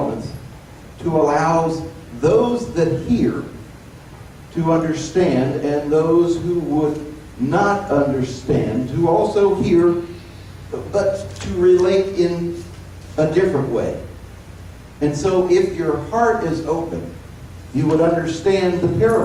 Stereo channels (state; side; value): identical; both; correlation 1.00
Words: to allow those that hear to understand, and those who would not understand to also hear, but to relate in a different way. And so if your heart is open, you would understand the